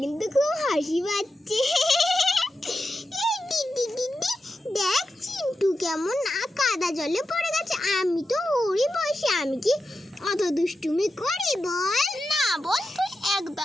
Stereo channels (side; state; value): both; normal; correlation 0.90